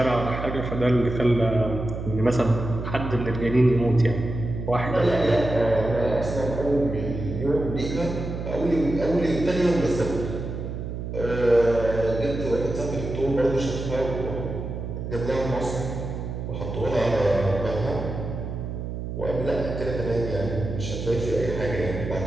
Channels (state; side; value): noise; right; hum, 6 dB below the sound